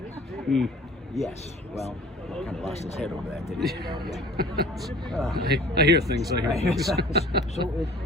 Mm. Yes. Well, he kind of lost his head over that, didn't he? Yeah. I hear things. I hear things. So it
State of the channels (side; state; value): both; normal; correlation 0.47